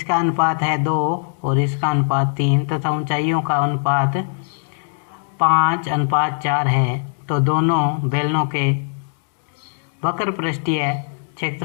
अनुपात है 2 और इसका अनुपात 3 तथा ऊंचाइयों का अनुपात 5:4 है। तो दोनों बेलनों के वक्र पृष्ठीय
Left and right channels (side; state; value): right; silent; digital silence